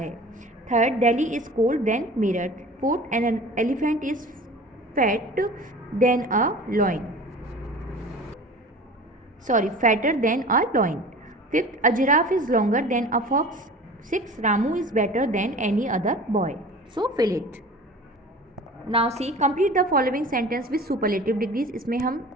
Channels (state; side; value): normal; both; correlation 0.40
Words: Third, Delhi is cold than Meerut. Fourth, an elephant is fat than a lion, sorry fatter than a lion. Fifth, a giraffe is longer than a fox. Sixth, Ramu is better than any other boy. So fill it. Now see, complete the following sentence with superlative degrees. इसमें हम